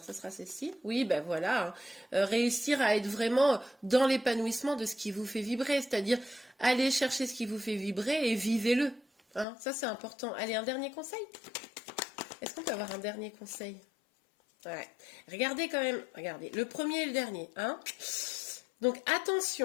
ce sera ceci. Oui, ben voilà, hein. Réussir à être vraiment dans l'épanouissement de ce qui vous fait vibrer, c'est-à-dire aller chercher ce qui vous fait vibrer et vivez-le, hein. Ça, c'est important. Allez, un dernier conseil? Est-ce qu'on peut avoir un dernier conseil? Ouais. Regardez quand même, regardez, le premier et le dernier, hein. Donc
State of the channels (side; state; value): right; drops out; at 9.5 s